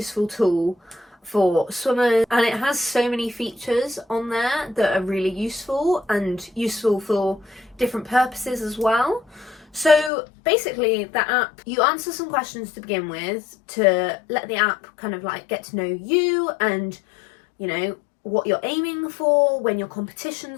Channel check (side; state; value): right; drops out; at 10.1 s